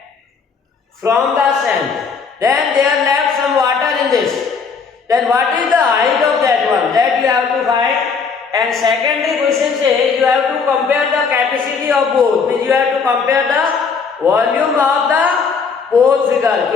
from the sand, then there left some water in this. Then what is the height of that one? That you have to find. And secondly question says you have to compare the capacity of both. Means you have to compare the volume of the both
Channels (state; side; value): quieter; right; 5.4 dB